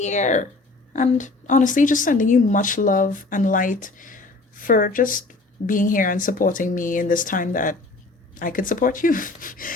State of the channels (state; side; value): quieter; right; 3.3 dB